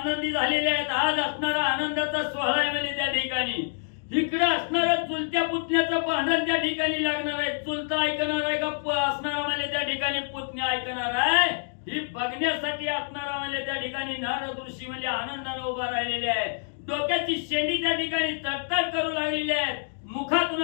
झालेले आहेत. आज असणारा आनंदाचा सोहळा आहे म्हणजे त्या ठिकाणी इकडे असणारं चुलत्या पुतण्याचं भांडण त्या ठिकाणी लागणार आहे. चुलता ऐकणार आहे का असणारा म्हणजे त्या ठिकाणी पुतण्या ऐकणार आहे, ही बघण्यासाठी असणारा म्हणजे त्या ठिकाणी नारद ऋषी म्हणजे आनंदाने उभा राहिलेले आहेत. डोक्याची शेंडी त्या ठिकाणी तडतड करू लागलेली आहेत. मुखातून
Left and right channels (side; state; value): right; silent; digital silence